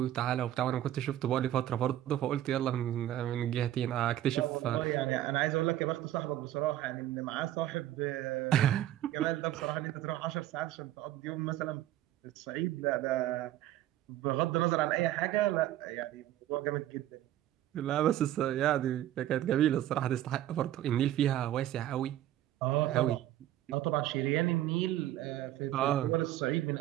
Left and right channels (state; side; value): quieter; left; 13.2 dB